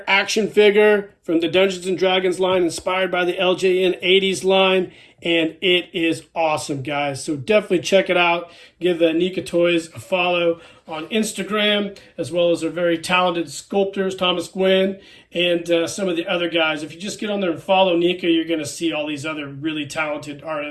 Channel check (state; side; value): identical; both; correlation 1.00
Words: action figure from the Dungeons & Dragons line, inspired by the LJN 80s line, and it is awesome, guys. So definitely check it out. Give NECA Toys a follow on Instagram, as well as their very talented sculptors, Thomas Gwynn, and some of the other guys. If you just get on there and follow NECA, you're going to see all these other really talented